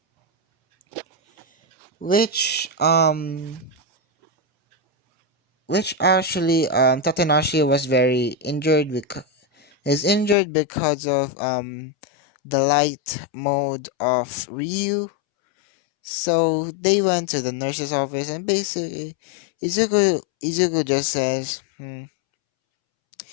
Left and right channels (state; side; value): drops out; right; at 10.4 s